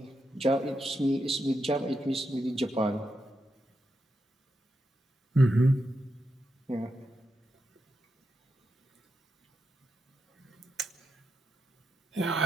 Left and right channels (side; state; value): both; normal; correlation 0.86